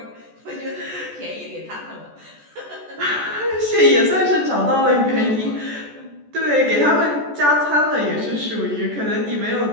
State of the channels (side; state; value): left; late; 14 ms